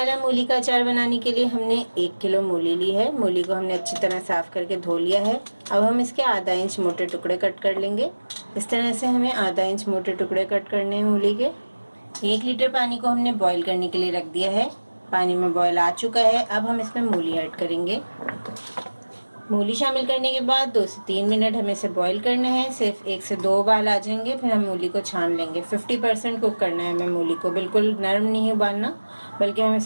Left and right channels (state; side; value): inverted; both; correlation -1.00